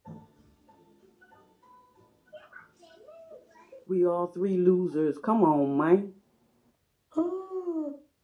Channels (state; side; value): identical; both; correlation 1.00